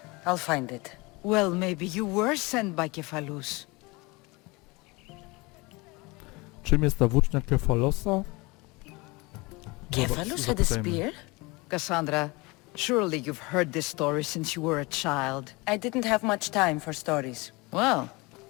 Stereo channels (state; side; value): quieter; right; 25.1 dB